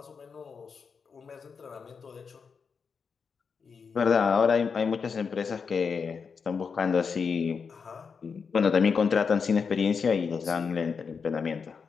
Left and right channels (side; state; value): right; quieter; 5.7 dB